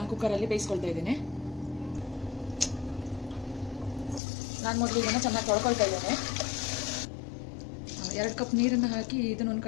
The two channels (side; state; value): right; drops out; at 4.2 s